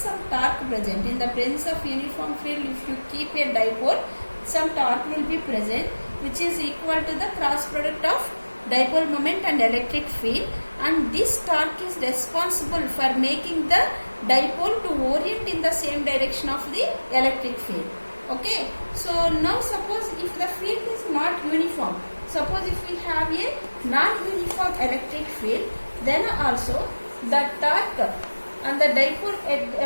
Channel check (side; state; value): both; inverted; correlation -1.00